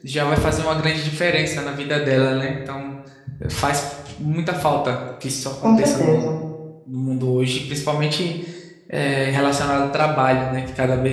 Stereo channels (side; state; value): both; identical; correlation 1.00